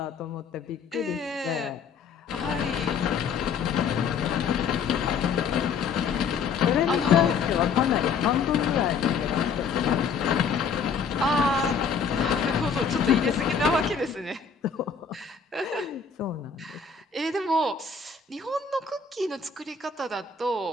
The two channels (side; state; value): right; quieter; 5.9 dB